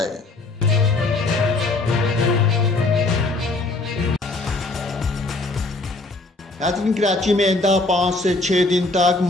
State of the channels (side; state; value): right; quieter; 3.2 dB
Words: नाज़रीन, कराची में आइंदा 5 से 6 दिन तक